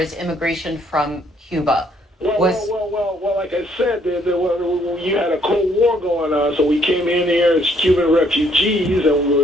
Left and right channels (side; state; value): both; normal; correlation 0.67